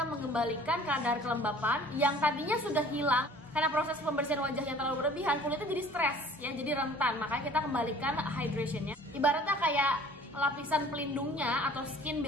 mengembalikan kadar kelembapan yang tadinya sudah hilang karena proses pembersihan wajah yang terlalu berlebihan, kulitnya jadi stres ya, jadi rentan. Makanya kita kembalikan hydrationnya, ibaratnya kayak lapisan pelindungnya atau skin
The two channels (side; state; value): both; normal; correlation 0.50